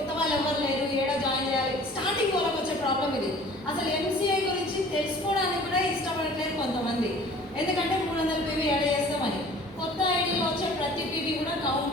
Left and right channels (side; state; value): both; normal; correlation 0.48